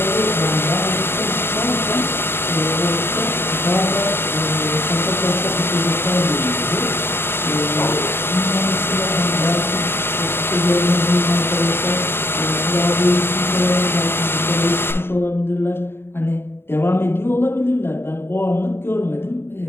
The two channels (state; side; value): late; right; 0.11 ms